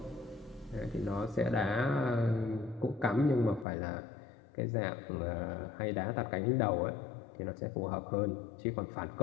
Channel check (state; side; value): drops out; right; at 3.7 s